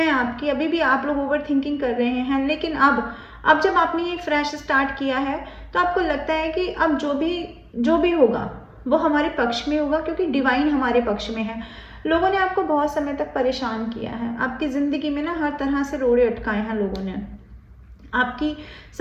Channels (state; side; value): identical; both; correlation 1.00